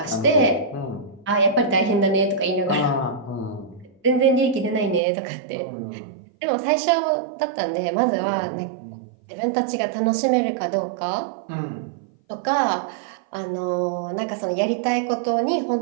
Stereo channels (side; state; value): left; drops out; at 5.0 s